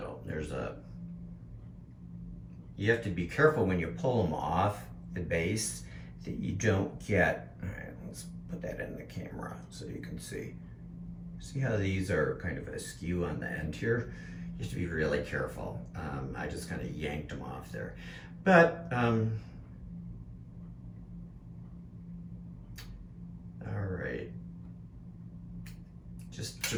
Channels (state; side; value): identical; both; correlation 1.00